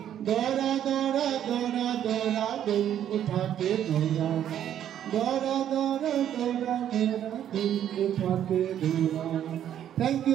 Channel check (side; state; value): left; quieter; 10.4 dB